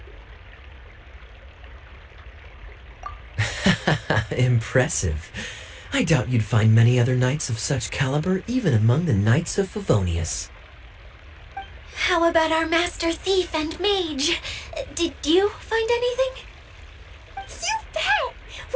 Impressive. I doubt you'd find many other knights of such caliber even among the knights of Favonius. How about our master thief and mage? Did you find anything? You bet!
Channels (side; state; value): both; identical; correlation 1.00